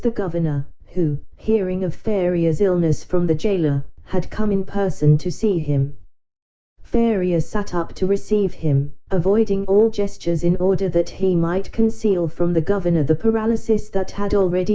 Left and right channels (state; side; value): identical; both; correlation 1.00